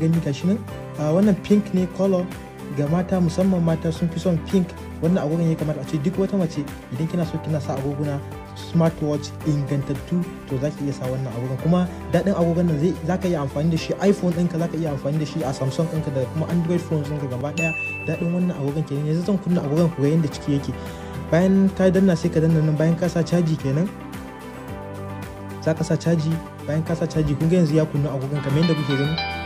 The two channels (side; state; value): both; identical; correlation 1.00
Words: gashi nan. Wannan pink ne color ga mata, musamman mata sun fi son pink. Wannan agogon ya kamata a ce duk wata mace idan kina so kina sa agoguna smartwatch ingantattu to za ki iya sa wannan agogon. Kuma daɗin agogon nan za ka iya amfani da shi iPhone ɗinka, za ka iya amfani da shi a Samsung ɗinka da kuma Android phones ɗinka gaba ɗaya. Daɗin wannan agogon kenan. Yanzu zan kunna agogon ku ga yadda ciki yake. Bayan ka danna sai ka danna nan, bayan ka sa caji kenan za ka sa caji. Bayan ka sa caji kun ga yanzu ya kunna agogon kamar yadda kuke gani.